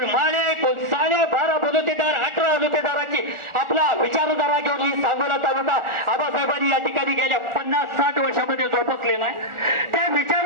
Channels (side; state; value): left; late; 1.4 ms